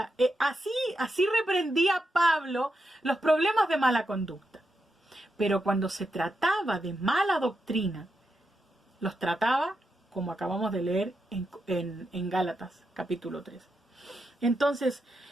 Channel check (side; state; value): both; normal; correlation 0.85